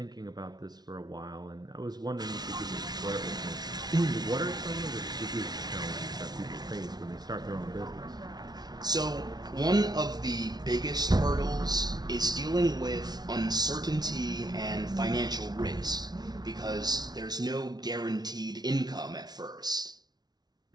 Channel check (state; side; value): late; left; 0.19 ms